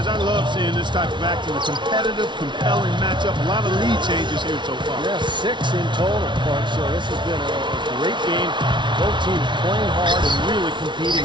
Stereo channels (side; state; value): left; late; 0.23 ms